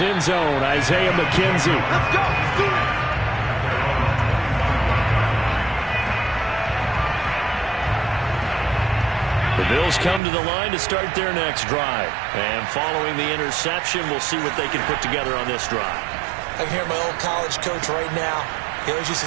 zone, Isaiah McKenzie. Let's go. Let's do it. The Bills come to the line to start their next drive. And following the interception, we'll see what they can put together on this drive. I can hear my old college coach right now. He always used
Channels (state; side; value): drops out; left; at 10.2 s